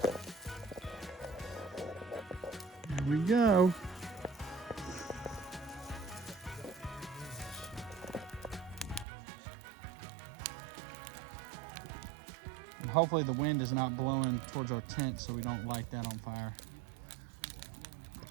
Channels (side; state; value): left; drops out; at 9.1 s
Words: Here we go. And hopefully the wind is not blowing towards our tent so we don't light that on fire.